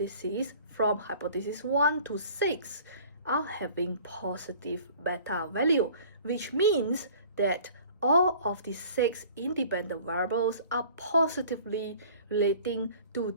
from hypothesis 1 to 6 are having positive beta value, which means that all of the 6 independent variables are positively relating to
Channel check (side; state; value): both; inverted; correlation -0.49